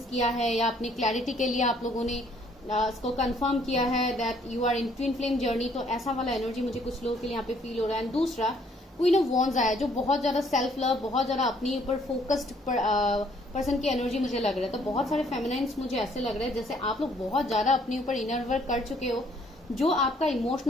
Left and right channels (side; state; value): both; normal; correlation 0.64